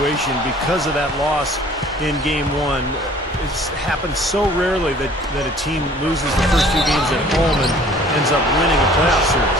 because of that loss in Game 1. It's happened so rarely that a team loses the first two games at home and ends up winning a playoff series.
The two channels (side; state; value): both; normal; correlation 0.52